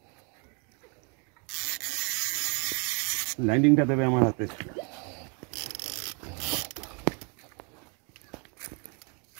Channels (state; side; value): quieter; left; 35.2 dB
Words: ল্যান্ডিংটা দেবে আমার হাতে।